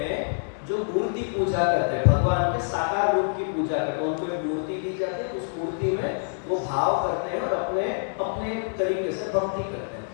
जो मूर्ति पूजा करते हैं, भगवान के साकार रूप की पूजा करते हैं। उनको एक मूर्ति दी जाती है, उस मूर्ति में वो भाव करते हैं और अपने अपने तरीके से भक्ति करते हैं।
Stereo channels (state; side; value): silent; right; digital silence